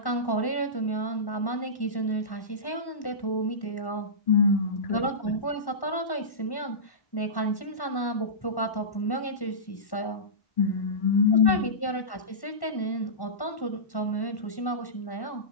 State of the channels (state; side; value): late; right; 1.1 ms